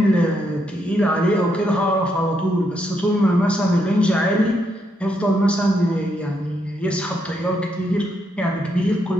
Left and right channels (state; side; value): normal; both; correlation 0.78